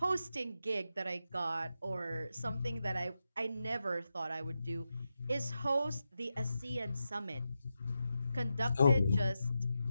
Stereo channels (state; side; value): inverted; both; correlation -0.88